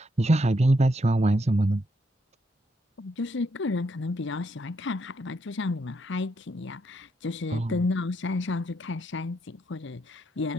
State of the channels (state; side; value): normal; both; correlation 0.77